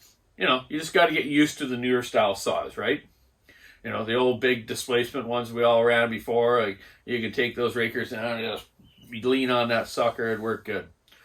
you just got to get used to the newer style saws, right? The old big displacement ones we all ran before, you can take those rakers down and just lean on that sucker and work good.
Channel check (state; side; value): identical; both; correlation 1.00